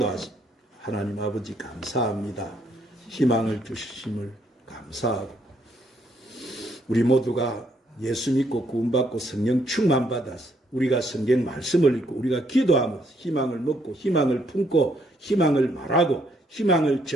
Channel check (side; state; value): both; normal; correlation 0.71